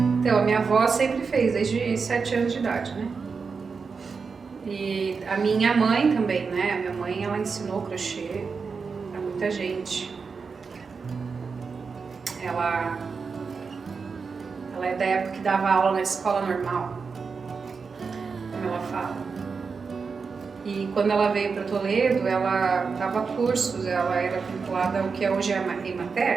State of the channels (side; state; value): left; quieter; 5.1 dB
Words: a minha avó sempre fez, desde 7 anos de idade, né? E a minha mãe também, né? A minha mãe, ela ensinou crochê pra muita gente. Ela é da época que dava aula na escola normal, como ela fala. E quando ela veio para Toledo, ela dava cursos, ela era vinculada ao que hoje é a